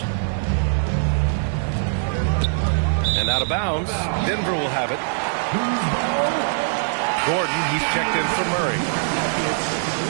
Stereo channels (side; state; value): left; silent; digital silence